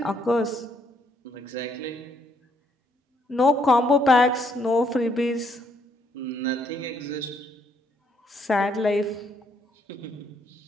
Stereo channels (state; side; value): normal; both; correlation 0.71